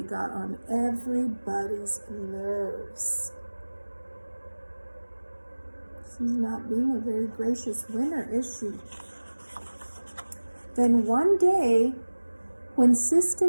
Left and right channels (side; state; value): both; inverted; correlation -1.00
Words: got on everybody's nerves. She's not being a very gracious winner, is she? Then one day, when